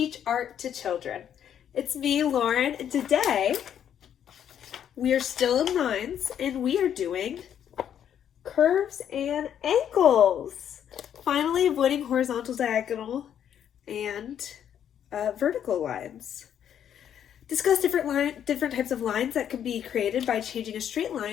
Art to Children. It's me, Lauren, and today we are still in lines and we are doing curves and ankles. Finally avoiding horizontal, diagonal, and vertical lines. Discuss different types of lines that can be created by changing a straight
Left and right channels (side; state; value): right; quieter; 9.4 dB